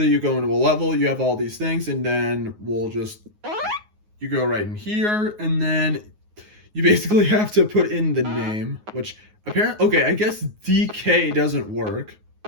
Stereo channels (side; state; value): left; late; 9.5 ms